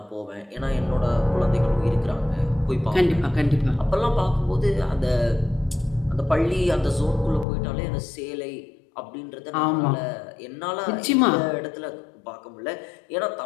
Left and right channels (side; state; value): right; drops out; at 7.5 s